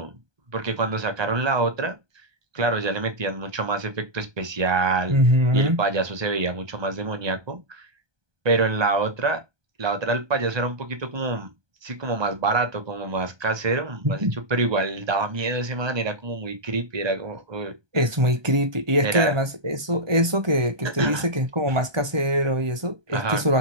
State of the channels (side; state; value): left; late; 1.2 ms